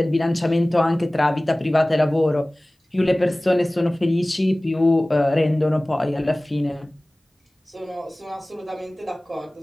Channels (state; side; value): normal; both; correlation 0.98